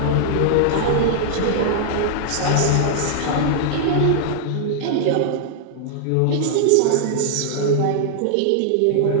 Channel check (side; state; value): both; different; correlation -0.01